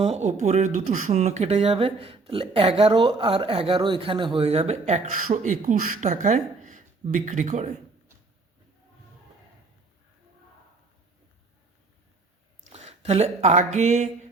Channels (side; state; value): left; quieter; 3.8 dB